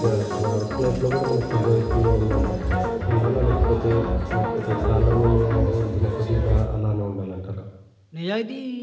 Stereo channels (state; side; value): identical; both; correlation 1.00